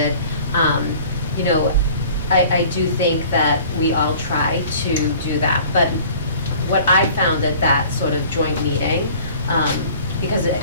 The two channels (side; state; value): both; inverted; correlation -0.48